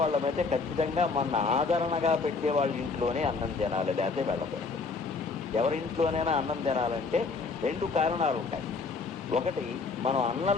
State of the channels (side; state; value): right; quieter; 4.4 dB